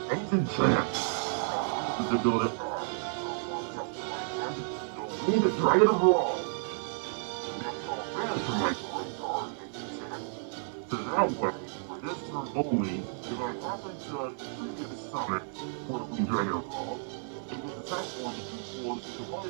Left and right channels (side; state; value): left; silent; 57 dB below the other